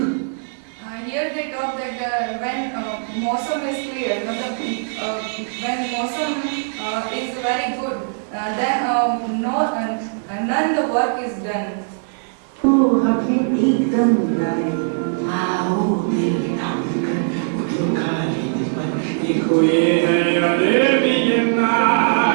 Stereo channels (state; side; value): silent; left; digital silence